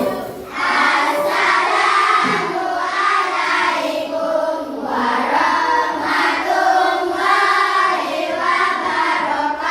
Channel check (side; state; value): both; identical; correlation 1.00